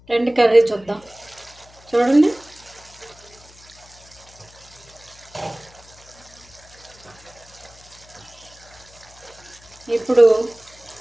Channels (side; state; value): left; noise; hum, 25 dB below the sound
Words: రెండు కర్రీ చూద్దాం. చూడండి, ఇప్పుడు